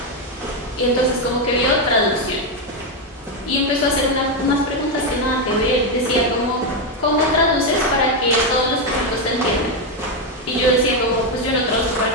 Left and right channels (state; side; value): normal; both; correlation 0.06